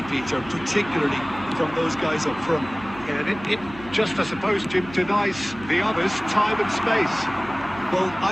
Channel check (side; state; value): right; noise; hum, 17 dB below the sound